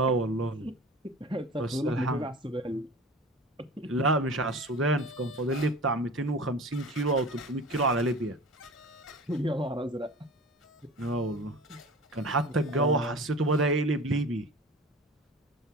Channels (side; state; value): both; normal; correlation 0.37